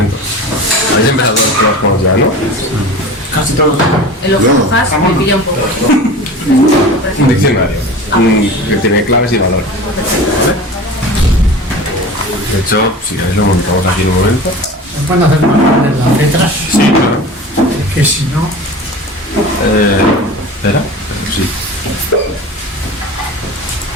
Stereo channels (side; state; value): both; normal; correlation 0.35